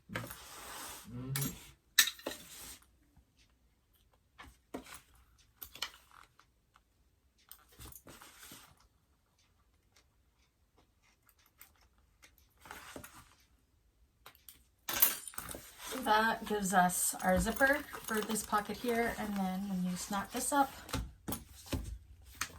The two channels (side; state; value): both; identical; correlation 1.00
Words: That gives us our zipper for this pocket here, and then when you snap this up, it